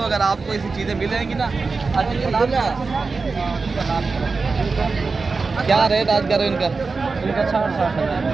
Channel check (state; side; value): quieter; left; 4.3 dB